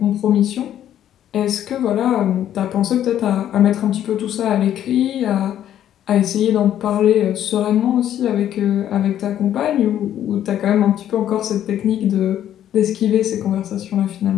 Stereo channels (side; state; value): right; quieter; 11.0 dB